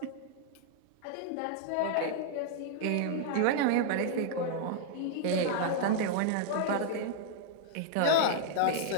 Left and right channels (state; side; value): different; both; correlation -0.01